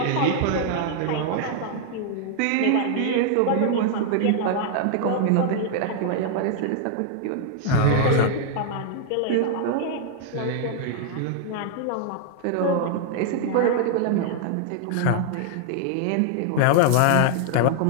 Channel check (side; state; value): both; different; correlation 0.00